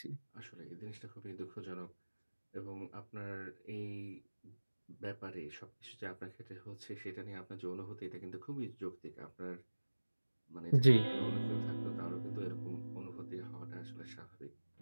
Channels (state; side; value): inverted; both; correlation -1.00